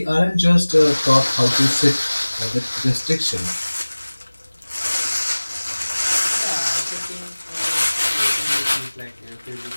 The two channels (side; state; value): both; inverted; correlation -1.00